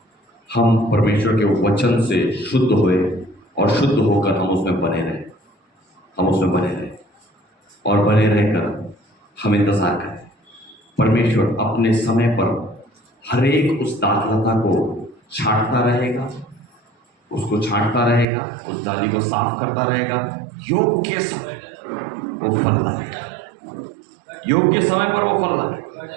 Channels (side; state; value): left; drops out; at 18.2 s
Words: हम परमेश्वर के वचन से शुद्ध हुए और शुद्ध होकर हम उसमें बने रहे, हम उसमें बने रहे और बने रहकर हम इंतजार करें। परमेश्वर अपने समय पर हर एक उस दाखलता को छांटता रहेगा, उसको छांटता रहेगा, उस डाली को साफ करता रहेगा, योग्य समय वो फल लाएगा, योग्य समय पर वो फल लाएगा।